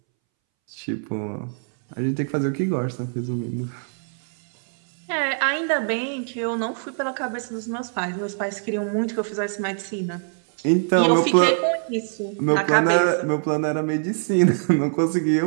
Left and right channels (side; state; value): left; silent; 63 dB below the other